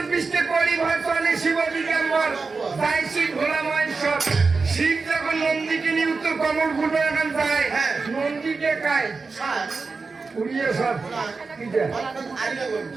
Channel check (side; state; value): left; quieter; 4.3 dB